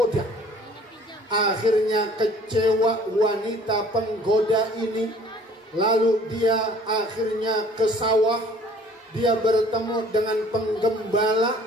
Akhirnya kecewa wanita penggoda ini. Lalu dia akhirnya ke sawah. Dia bertemu dengan penggembala.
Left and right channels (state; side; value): normal; both; correlation 0.54